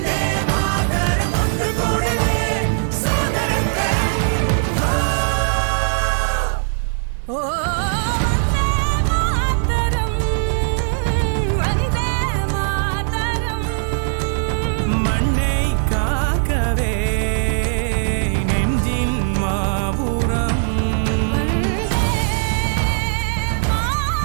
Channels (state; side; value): silent; left; 66 dB below the other